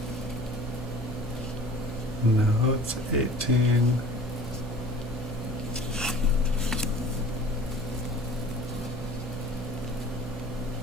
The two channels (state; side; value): normal; both; correlation 0.45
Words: No, it's 18.